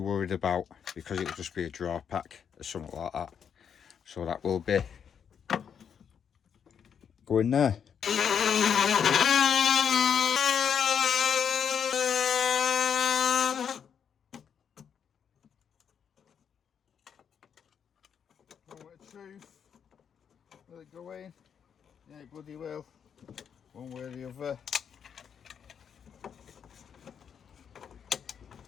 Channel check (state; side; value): quieter; right; 7.6 dB